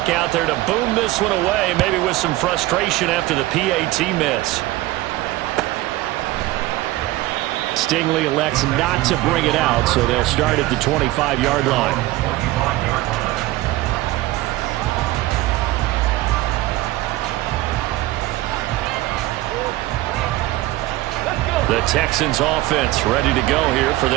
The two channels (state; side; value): quieter; left; 17.7 dB